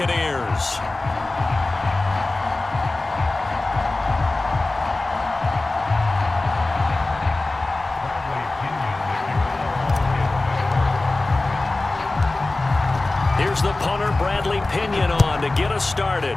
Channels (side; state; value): right; quieter; 3.1 dB